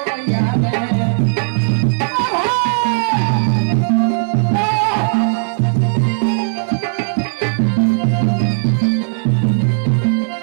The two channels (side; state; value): left; silent; 60 dB below the other